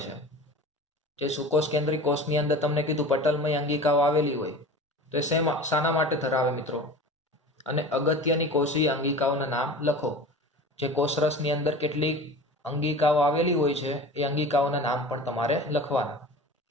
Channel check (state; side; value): normal; both; correlation 0.36